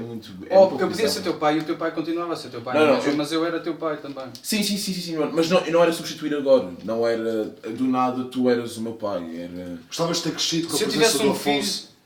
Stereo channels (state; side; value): identical; both; correlation 1.00